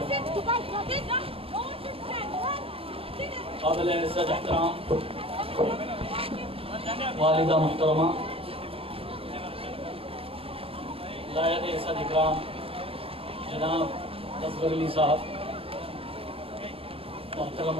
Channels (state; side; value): late; left; 0.27 ms